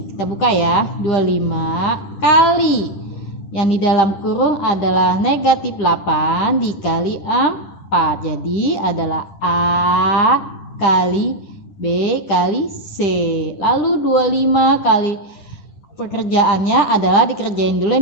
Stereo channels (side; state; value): right; late; 10 ms